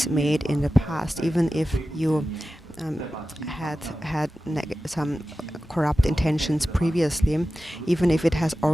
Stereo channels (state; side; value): normal; both; correlation 0.95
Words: made in the past, even if you had some corrupt intentions previously, even if it has